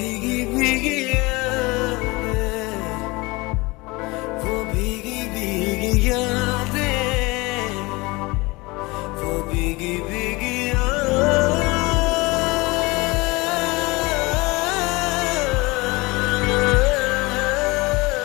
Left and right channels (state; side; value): quieter; right; 23.8 dB